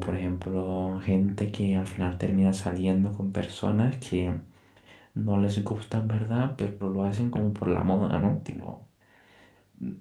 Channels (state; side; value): identical; both; correlation 1.00